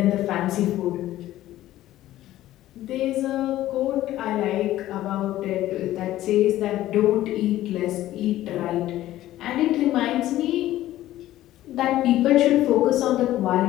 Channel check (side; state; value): right; quieter; 14.4 dB